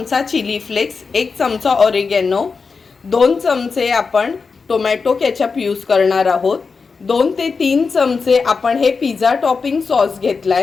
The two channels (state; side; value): quieter; right; 4.9 dB